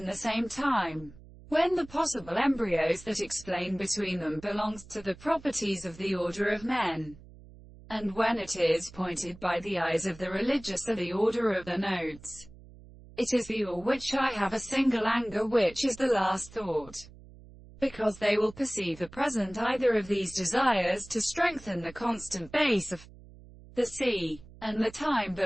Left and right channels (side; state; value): right; noise; hum, 20 dB below the sound